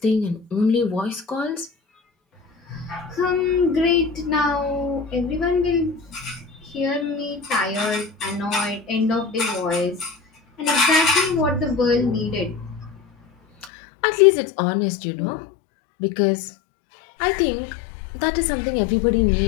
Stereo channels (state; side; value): drops out; right; at 13.7 s